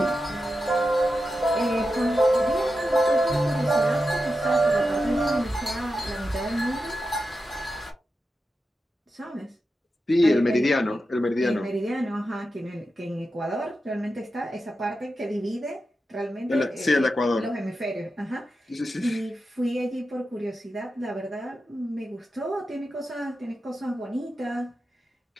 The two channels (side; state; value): both; normal; correlation 0.90